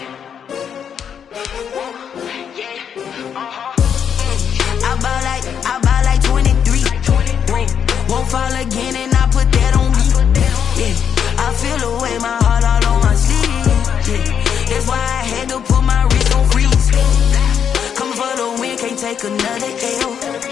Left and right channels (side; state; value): right; quieter; 8.0 dB